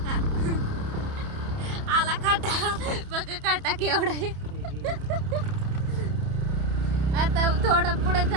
आता केवढं आता थोडं पुढे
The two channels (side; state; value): left; late; 30 ms